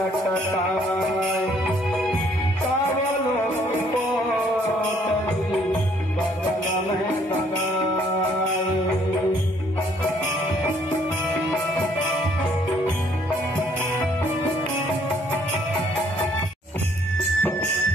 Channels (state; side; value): normal; both; correlation 0.64